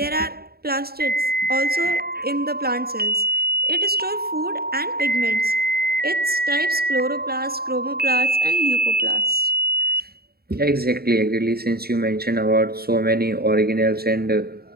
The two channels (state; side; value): late; left; 0.45 ms